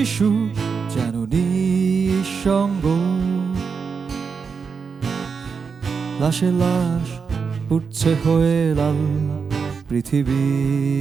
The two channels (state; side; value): quieter; left; 5.6 dB